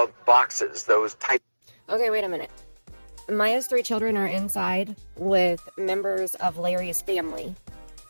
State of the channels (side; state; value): both; inverted; correlation -1.00